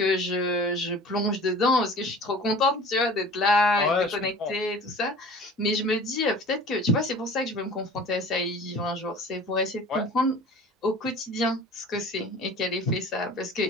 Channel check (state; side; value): normal; both; correlation 0.43